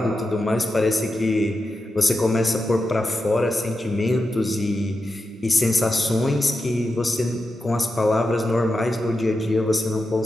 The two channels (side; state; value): both; normal; correlation 0.89